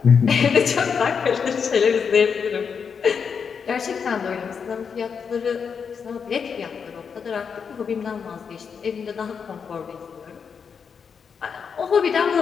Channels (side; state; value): right; quieter; 6.3 dB